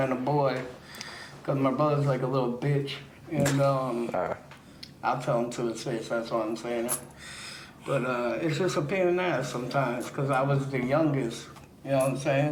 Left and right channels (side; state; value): both; identical; correlation 1.00